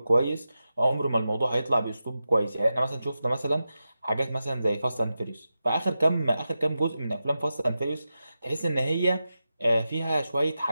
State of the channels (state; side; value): inverted; both; correlation -0.91